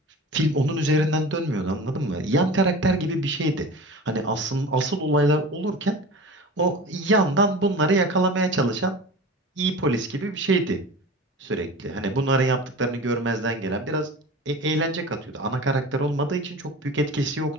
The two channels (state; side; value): normal; both; correlation 0.35